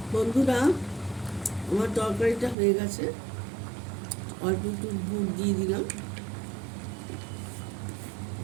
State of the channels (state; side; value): drops out; left; at 2.6 s